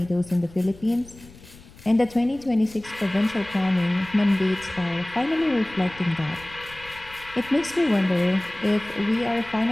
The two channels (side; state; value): left; noise; rumble, 21 dB below the sound